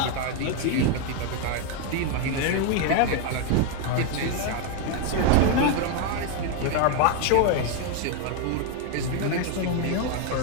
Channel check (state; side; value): different; both; correlation 0.01